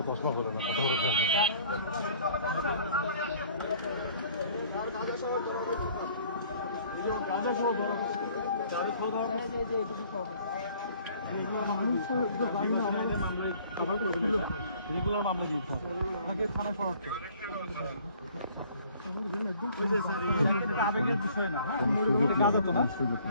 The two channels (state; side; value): inverted; both; correlation -0.55